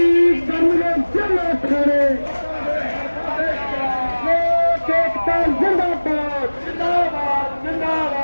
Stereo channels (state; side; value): inverted; both; correlation -1.00